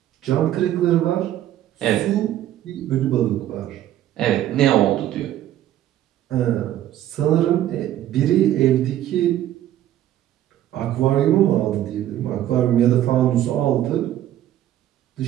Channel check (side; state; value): left; quieter; 12.5 dB